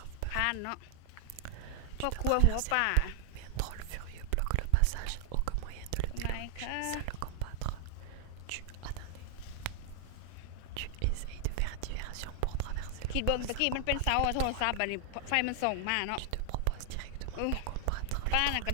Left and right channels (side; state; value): both; different; correlation 0.00